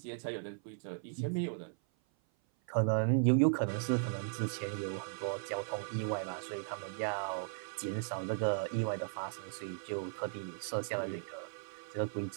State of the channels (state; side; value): silent; left; 53 dB below the other